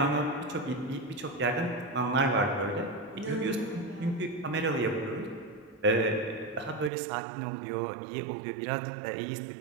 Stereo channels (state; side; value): drops out; left; at 6.9 s